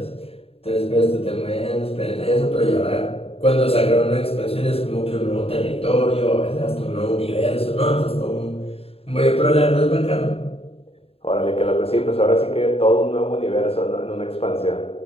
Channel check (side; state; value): right; late; 0.28 ms